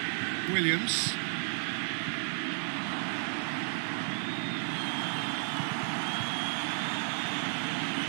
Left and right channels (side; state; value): left; silent; 56 dB below the other